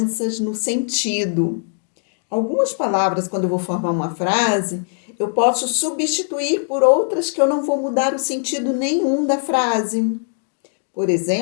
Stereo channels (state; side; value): silent; right; digital silence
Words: no sentido. Algumas palavras, quando eu vou formar uma frase, eu posso substituir por outras que eu não vou mudar o sentido nenhum da frase. Por